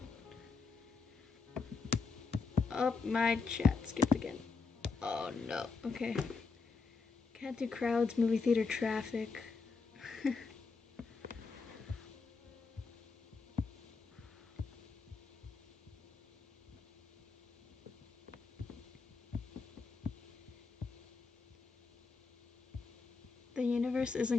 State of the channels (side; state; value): right; quieter; 4.6 dB